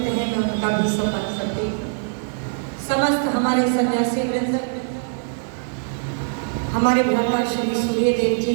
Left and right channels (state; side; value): silent; left; digital silence